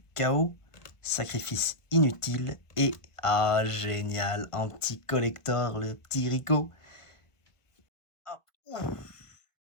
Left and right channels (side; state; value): right; late; 1.3 ms